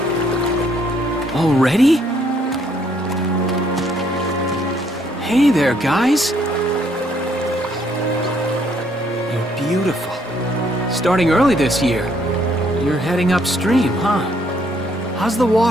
Already? Hey there, guys! You're beautiful. Starting early this year. You're heading upstream, huh? How's the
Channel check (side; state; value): both; normal; correlation 0.68